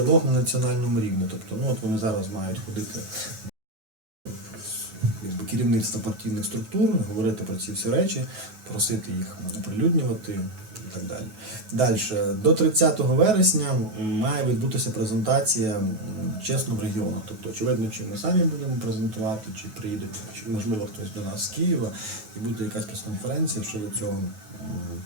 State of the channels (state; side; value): late; left; 9.3 ms